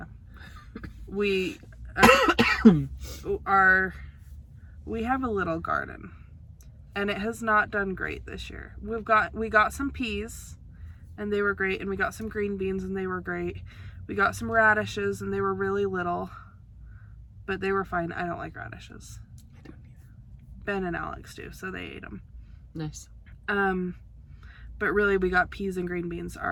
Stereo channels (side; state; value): both; identical; correlation 1.00